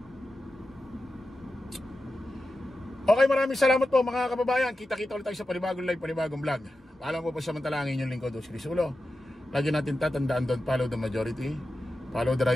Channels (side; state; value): both; normal; correlation 0.92